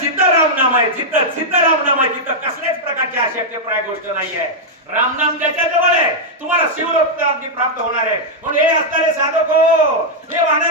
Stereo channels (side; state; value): both; normal; correlation -0.04